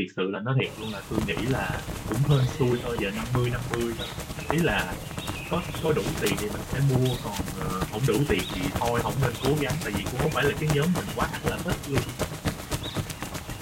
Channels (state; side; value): identical; both; correlation 1.00